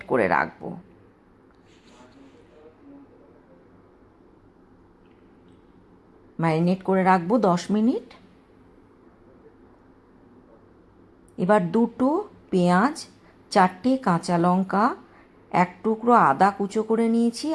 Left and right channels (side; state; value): both; identical; correlation 1.00